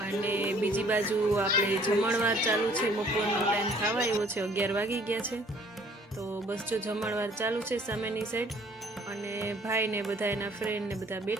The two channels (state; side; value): normal; both; correlation 0.57